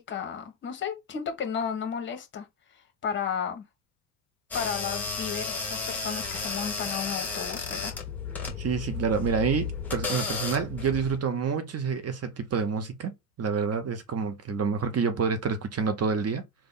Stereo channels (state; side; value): normal; both; correlation 0.07